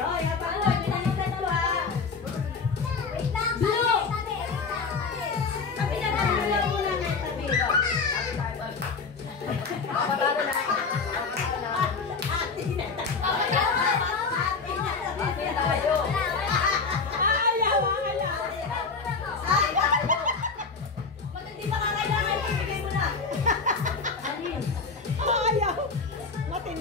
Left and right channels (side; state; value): right; quieter; 4.7 dB